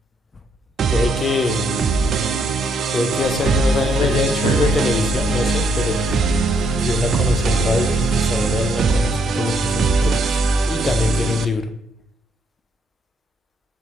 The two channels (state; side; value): normal; both; correlation 0.73